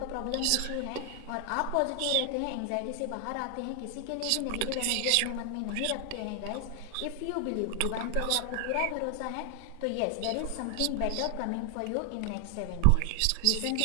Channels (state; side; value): different; both; correlation 0.00